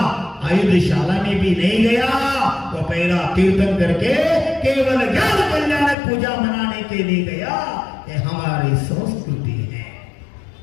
आयुधशाला में भी नहीं गया, वो पहला तीर्थन करके केवल ज्ञान कल्याणक पूजा मनाने के लिए गया। ये हमारी संस्कृति है।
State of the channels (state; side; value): drops out; right; at 6.0 s